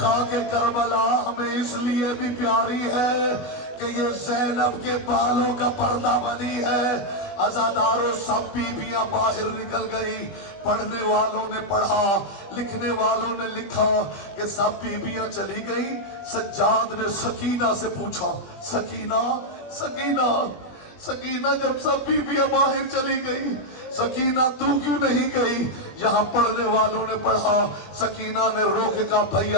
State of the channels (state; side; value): late; right; 21 ms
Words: کربلا ہمیں اس لیے بھی پیاری ہے کہ یہ زینب کے بالوں کا پردہ بنی ہے۔ عزاداروں سب بیبیاں باہر نکل گئی، پڑھنے والوں نے پڑھا، لکھنے والوں نے لکھا کہ سب بیبیاں چلی گئی۔ سجاد نے سکینہ سے پوچھا سکینہ سکینہ سکینہ جب سب بیبیاں باہر چلی گئی سکینہ تو کیوں نہیں گئی؟ یہاں پڑھنے والوں نے پڑھا، سکینہ نے رو کے کہا